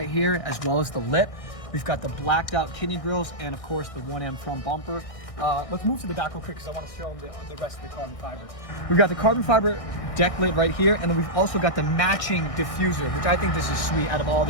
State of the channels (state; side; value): late; right; 1.6 ms